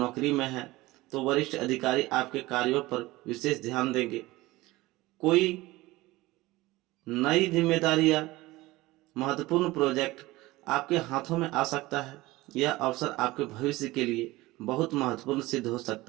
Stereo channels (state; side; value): quieter; left; 19.4 dB